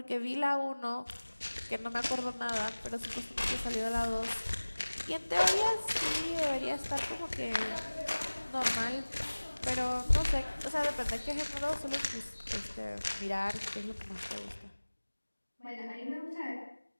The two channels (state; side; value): inverted; both; correlation -1.00